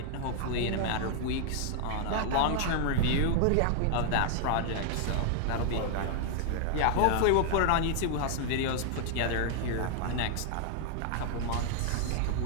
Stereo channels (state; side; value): different; both; correlation 0.00